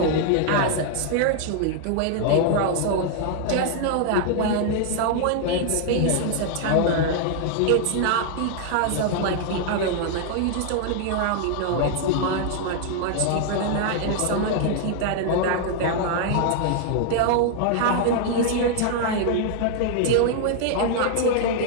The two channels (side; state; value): both; different; correlation 0.00